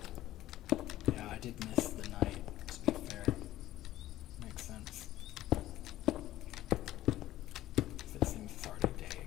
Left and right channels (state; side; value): quieter; right; 14.6 dB